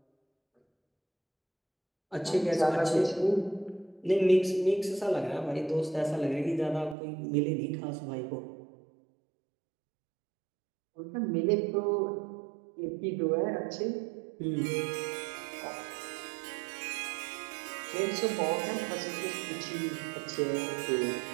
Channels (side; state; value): left; drops out; at 7.0 s